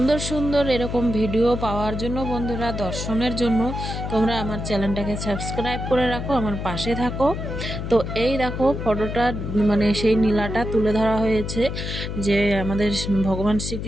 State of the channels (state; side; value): noise; left; hum, 5 dB below the sound